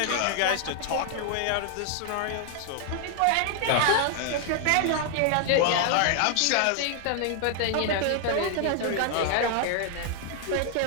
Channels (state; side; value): different; both; correlation 0.00